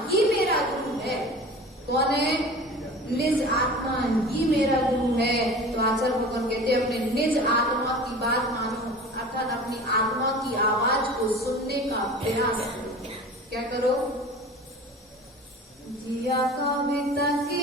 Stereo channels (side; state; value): both; normal; correlation 0.38